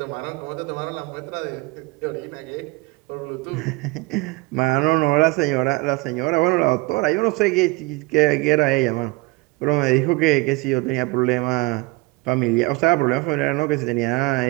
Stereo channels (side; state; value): left; quieter; 23.5 dB